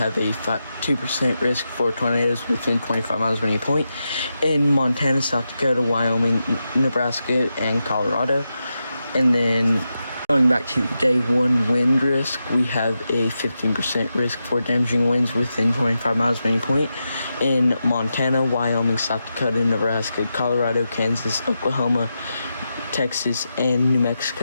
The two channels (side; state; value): both; inverted; correlation -0.88